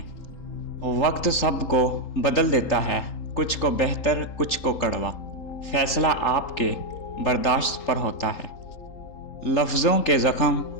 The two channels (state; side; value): late; right; 3.8 ms